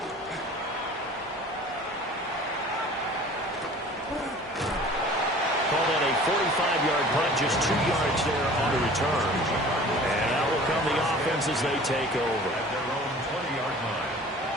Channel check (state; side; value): normal; both; correlation 0.45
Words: Call that a 45-yard punt, just 2 yards there on the return. And out will come the offense as they take over. At their own 20-yard line.